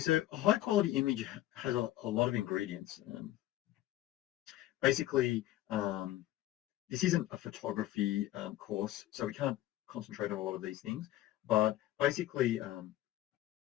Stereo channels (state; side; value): quieter; right; 14.6 dB